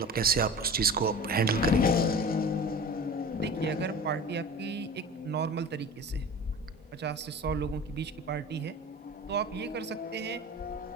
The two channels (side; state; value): both; normal; correlation 0.36